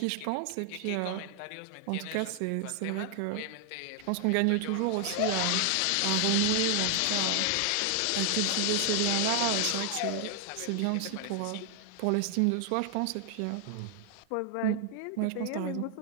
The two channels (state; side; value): different; both; correlation 0.00